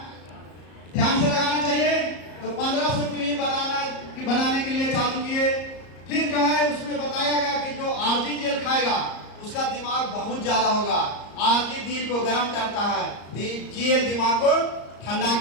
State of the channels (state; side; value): late; right; 34 ms